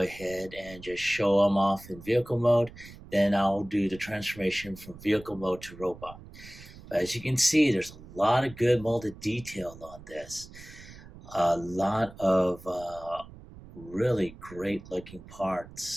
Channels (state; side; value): noise; right; rumble, 18 dB below the sound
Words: and just show him off in vehicle mode. Then I'll do the transformation from vehicle mode to robot. But as you can see, there's a lot of good molded detail on this. A lot of really great looking